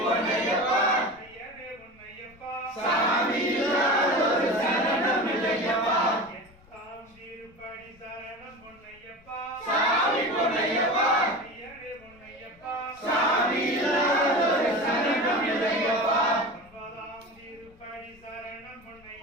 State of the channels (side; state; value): left; noise; rumble, 27 dB below the sound